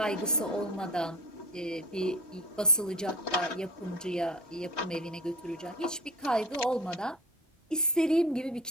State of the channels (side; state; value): both; normal; correlation 0.36